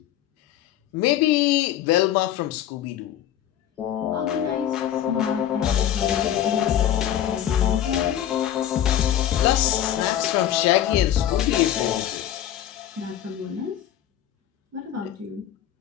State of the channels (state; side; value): quieter; right; 11.1 dB